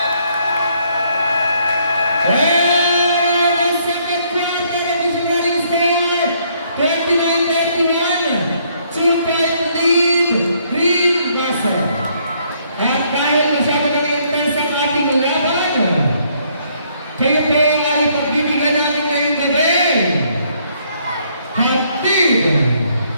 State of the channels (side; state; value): both; inverted; correlation -0.68